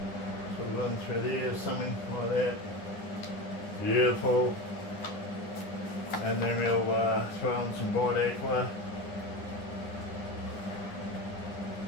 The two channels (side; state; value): right; late; 10 ms